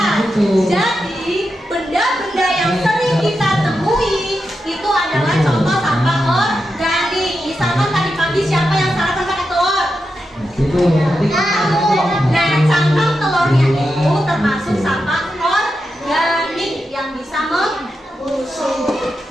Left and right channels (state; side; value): normal; both; correlation 0.88